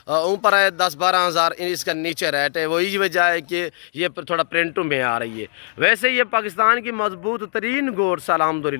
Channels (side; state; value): right; silent; digital silence